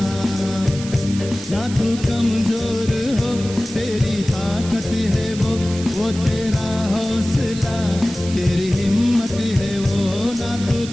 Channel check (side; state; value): right; noise; hiss, 13 dB below the sound